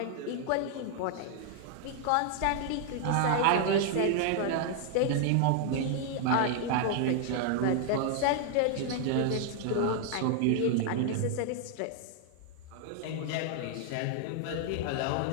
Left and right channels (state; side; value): different; both; correlation 0.00